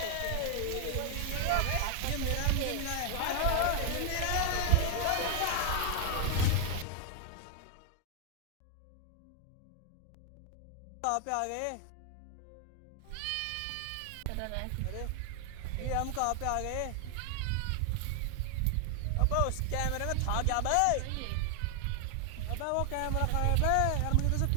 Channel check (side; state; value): both; different; correlation 0.00